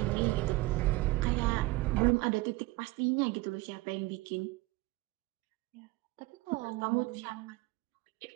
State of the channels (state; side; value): quieter; left; 20.8 dB